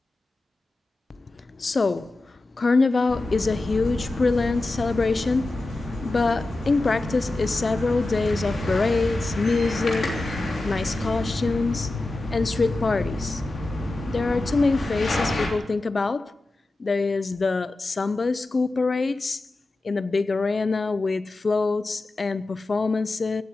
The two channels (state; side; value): quieter; right; 3.0 dB